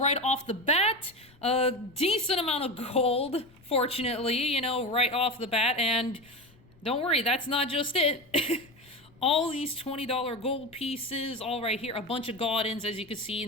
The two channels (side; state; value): left; noise; rumble, 28 dB below the sound